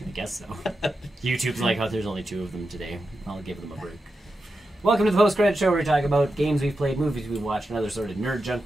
I guess so. YouTube's like, oh, there's only 2 of them today. I'll give them a break. Welcome to the post-credit show where we talk about games we've played, movies we've watched, and other sort of nerd junk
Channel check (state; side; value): normal; both; correlation 0.89